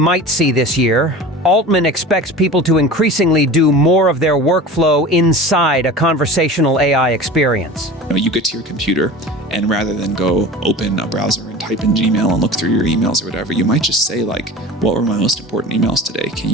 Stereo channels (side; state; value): both; normal; correlation 0.36